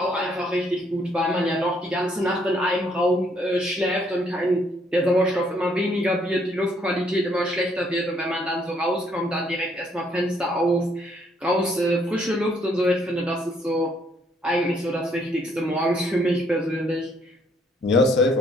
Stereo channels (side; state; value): both; normal; correlation 0.68